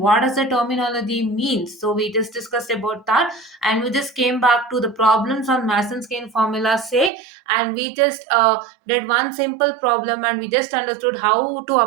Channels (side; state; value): left; drops out; at 7.1 s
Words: does the terminology means. So we just discussed about that and we just came back to the problems on Mason's-Gain formula say, and we just did one simple problem and we just understood how to